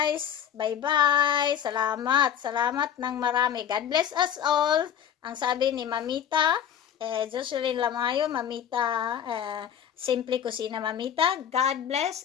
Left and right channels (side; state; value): right; quieter; 9.2 dB